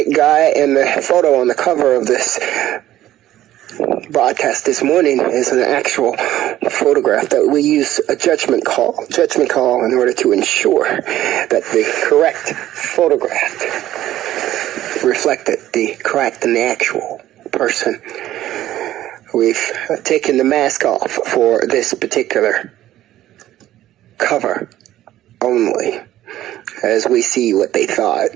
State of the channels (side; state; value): left; quieter; 13.7 dB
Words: guy, and the photo on the cover of this broadcast this morning is an actual photograph that we use a judgment call in order to ensure that the correct photograph reflected the correct and the actual person. We've taken the mask off for this particular cover only, as we see what they thought.